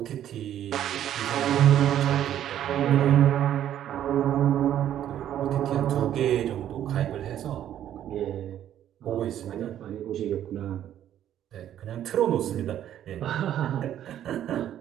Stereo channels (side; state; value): left; quieter; 11.1 dB